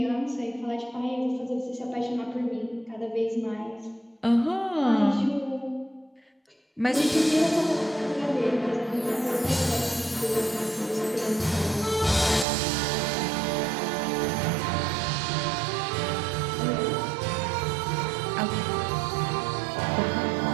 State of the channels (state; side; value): drops out; left; at 12.5 s